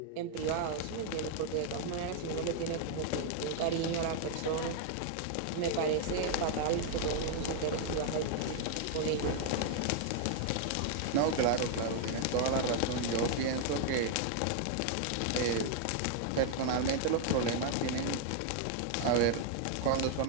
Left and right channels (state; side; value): different; both; correlation 0.00